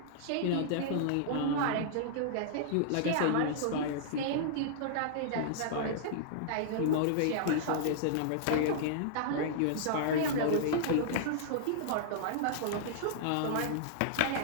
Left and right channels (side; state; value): both; different; correlation -0.01